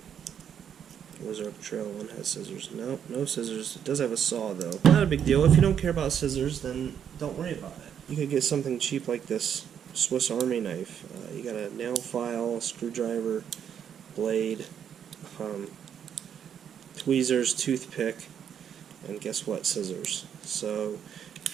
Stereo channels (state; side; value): quieter; left; 8.6 dB